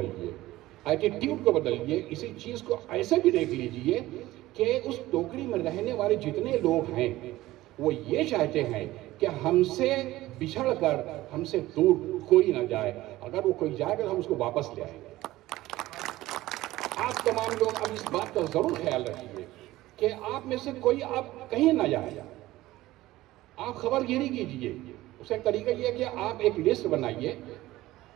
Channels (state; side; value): quieter; left; 16.9 dB